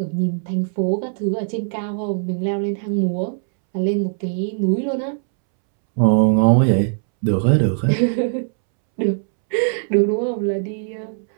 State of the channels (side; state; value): left; silent; 66 dB below the other